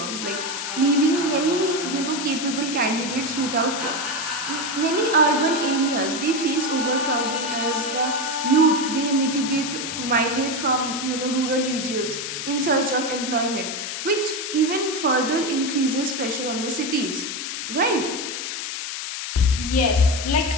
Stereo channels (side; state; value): left; noise; hiss, 5 dB below the sound